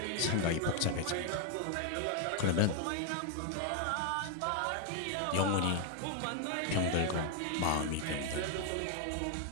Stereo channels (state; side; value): different; both; correlation 0.00